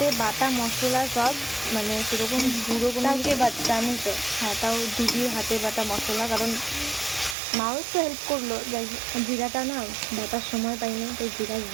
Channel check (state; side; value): drops out; left; at 7.4 s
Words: বাটা মশলা সব, মানে সেরকম গুঁড়ো কোনো কিছু বাচ্চা আমি তো। হ্যাঁ, তাও দিদির হাতে বাটা মশলা, কারণ মাও একটু হেল্প করলো। জিরাটা না বাটার সময় পাইনি, তো জিরা